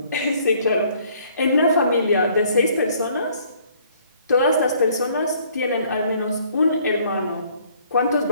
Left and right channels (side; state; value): both; inverted; correlation -0.61